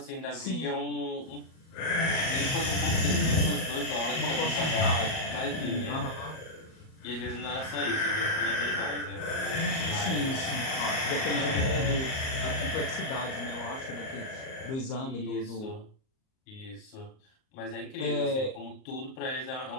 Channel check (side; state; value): right; late; 38 ms